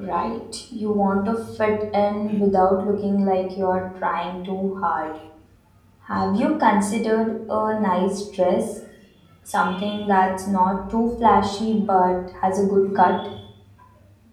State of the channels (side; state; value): both; identical; correlation 1.00